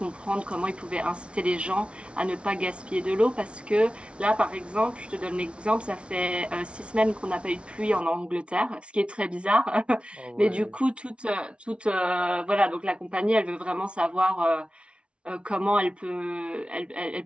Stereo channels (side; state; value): left; late; 0.059 ms